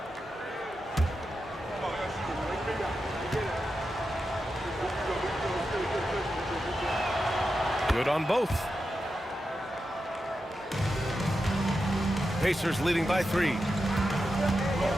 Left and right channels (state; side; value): normal; both; correlation 0.89